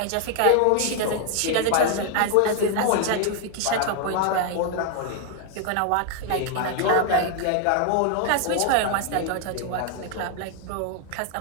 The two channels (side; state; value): both; different; correlation 0.00